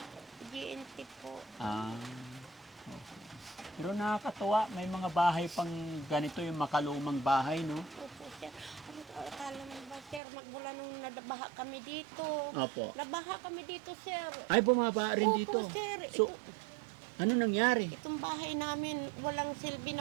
GNT po. Pero nakakatuwa, may mga bahay pang ganito, yung makalumang bahay, no? Opo, sir. Akala mo ba, sir, magmula nung nabaha kami dito. Opo. Nabaha kami dito, sir. Ay, bumaba rin dito. Opo, sir. So, ano nangyari? Itong bahay namin, walang silbi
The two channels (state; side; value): drops out; left; at 10.2 s